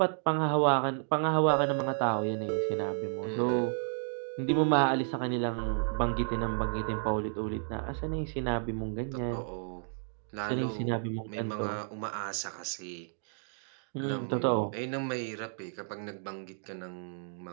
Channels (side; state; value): left; silent; digital silence